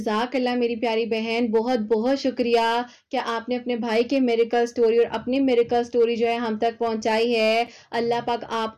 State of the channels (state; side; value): identical; both; correlation 1.00